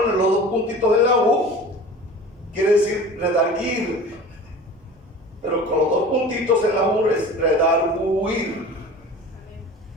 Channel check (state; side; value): normal; both; correlation 0.38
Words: los 2 puntitos en la U, quiere decir redarguir. Pero con los 2 puntitos en la U es redarguir.